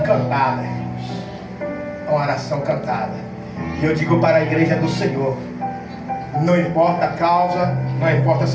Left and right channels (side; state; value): both; identical; correlation 1.00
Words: cantada, irmãos. É uma oração cantada. E eu digo para a igreja do Senhor: não importa a causa, não importa a